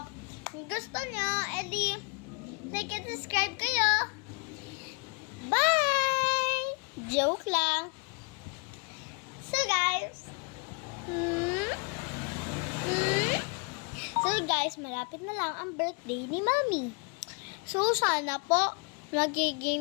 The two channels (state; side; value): quieter; right; 35.4 dB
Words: Kung gusto nyo, edi like and subscribe kayo. Bye! Joke lang. So guys, malapit na lang ang birthday ni Mommy. So sana po